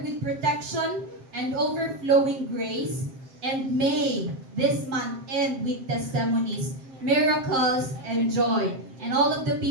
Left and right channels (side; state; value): left; late; 7.5 ms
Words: with protection and overflowing grace, and may this month end with testimonies, miracles, and joy. And all of the